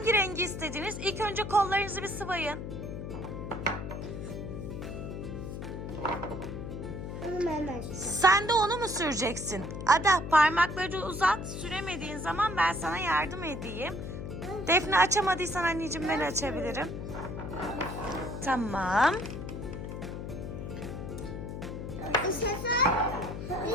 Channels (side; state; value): left; noise; hum, 7 dB below the sound